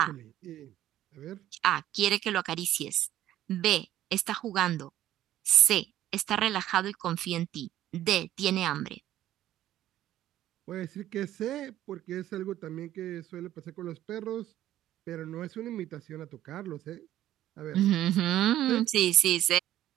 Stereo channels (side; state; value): left; quieter; 13.2 dB